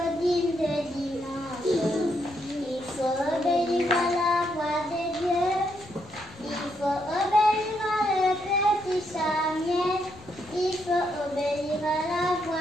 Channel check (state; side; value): normal; both; correlation 0.77